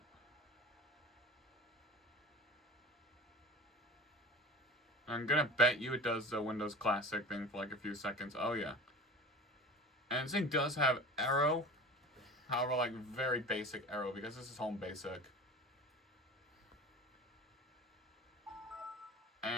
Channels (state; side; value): normal; both; correlation 0.36